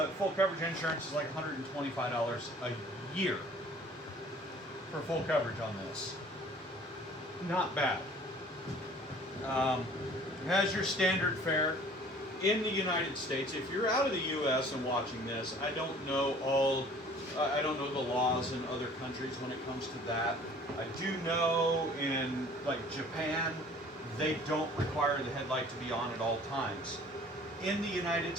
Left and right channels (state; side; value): normal; both; correlation 0.51